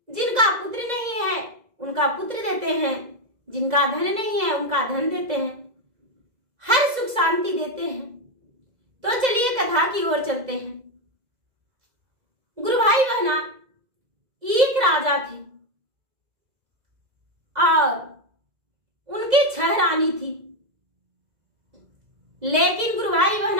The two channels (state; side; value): late; left; 2.0 ms